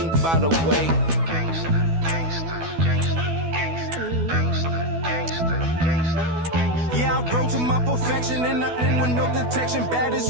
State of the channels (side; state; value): left; late; 12 ms